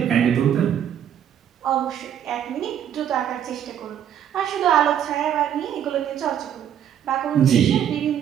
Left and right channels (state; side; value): quieter; left; 9.7 dB